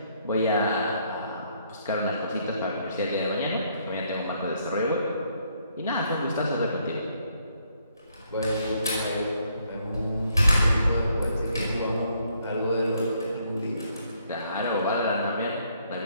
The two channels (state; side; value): inverted; both; correlation -0.70